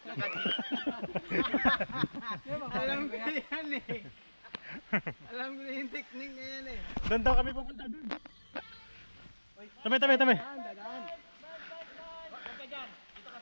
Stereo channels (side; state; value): both; inverted; correlation -1.00